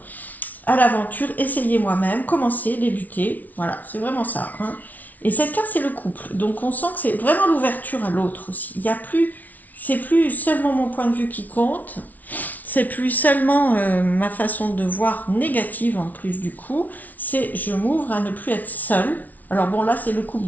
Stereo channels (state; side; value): late; right; 0.077 ms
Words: l'aventure, essayer moi-même, commencer, débuter. Voilà, c'est vraiment ça. Hein. Et cette carte, c'est le couple. Donc on sent que c'est vraiment l'ouverture à l'autre aussi. Il y a plus, c'est plus seulement mon point de vue qui compte, c'est plus seulement ma façon de voir négative en plus du coup, c'est je m'ouvre à ne plus être seule. Alors bon, là c'est le couple,